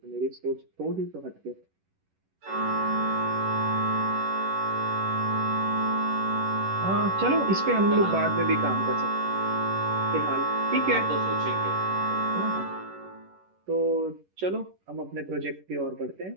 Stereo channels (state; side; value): late; left; 11 ms